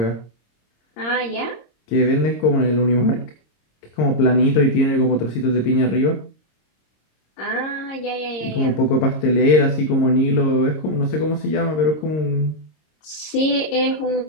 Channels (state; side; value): late; right; 26 ms